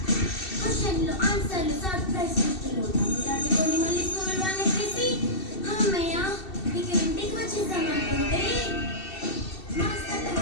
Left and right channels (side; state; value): right; late; 2.7 ms